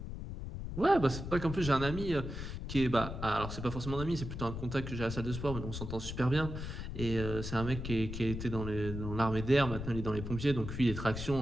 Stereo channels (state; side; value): noise; left; rumble, 7 dB below the sound